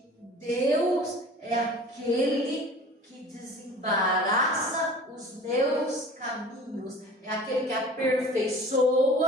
Deus é aquele que desembaraça os meus caminhos, é aquele que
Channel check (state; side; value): normal; both; correlation 0.43